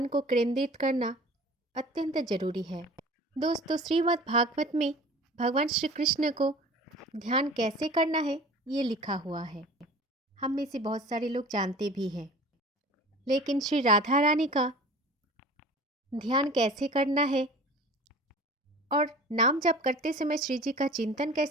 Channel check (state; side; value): normal; both; correlation 0.42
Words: को केंद्रित करना अत्यंत जरूरी है। दोस्तों, श्रीमद् भागवत में भगवान श्री कृष्ण को ध्यान कैसे करना है ये लिखा हुआ है। हम में से बहुत सारे लोग जानते भी हैं, लेकिन श्री राधा रानी का ध्यान कैसे करना है और नाम जप करते समय श्री जी का चिंतन